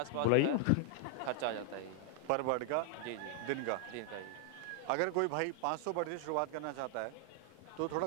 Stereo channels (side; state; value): both; different; correlation 0.00